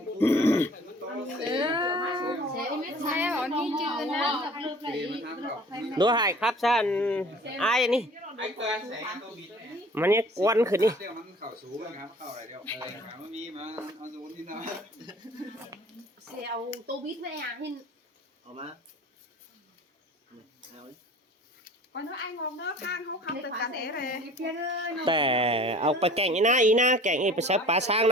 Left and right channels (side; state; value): both; normal; correlation 0.47